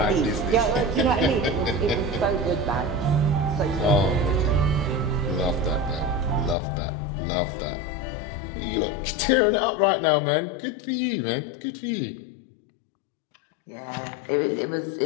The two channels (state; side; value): drops out; right; at 6.6 s